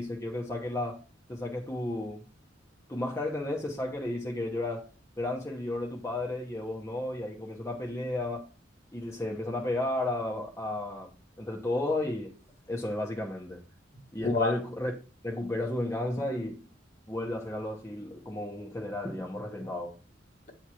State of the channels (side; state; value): both; normal; correlation 0.69